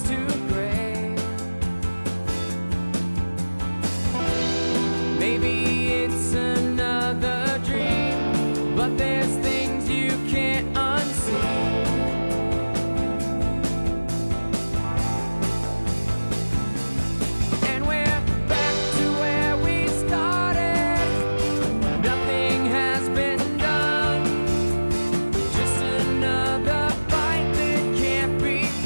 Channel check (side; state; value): both; inverted; correlation -1.00